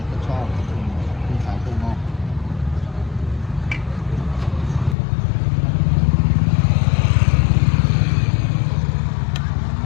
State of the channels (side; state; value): right; drops out; at 5.0 s